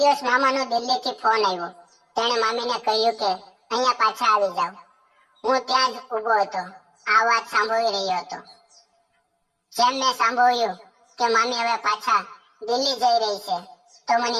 મામાનો દિલ્હીથી ફોન આવ્યો. તેણે મામીને કહ્યું કે અહીંયા પાછા આવી જાઓ. હું ત્યાં જ ઊભો હતો, આ વાત સાંભળી રહ્યો હતો. જેમ મેં સાંભળ્યું કે મામી હવે પાછા દિલ્હી જઈ રહી છે, તો મને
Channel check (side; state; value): both; identical; correlation 1.00